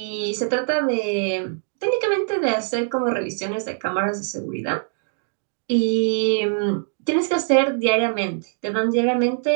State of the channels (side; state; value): left; silent; digital silence